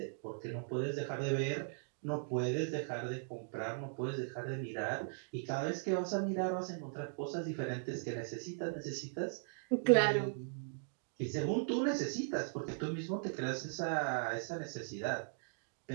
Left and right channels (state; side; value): silent; left; digital silence